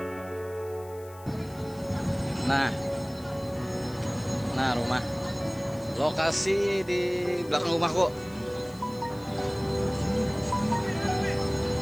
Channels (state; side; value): noise; left; hiss, 23 dB below the sound